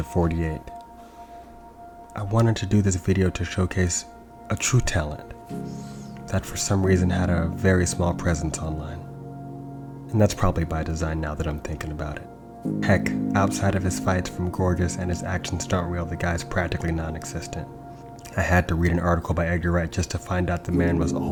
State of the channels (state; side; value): identical; both; correlation 1.00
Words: 48. I wanted to do this video to showcase a true talent that for some reason had a very small presence online. And that's probably by design now that I'm thinking about it. Heck, outside of his fights from Gorgeous and his action stunt reel, the guy's practically non-existent. I had to read an article by Edgar Wright just to find out the man was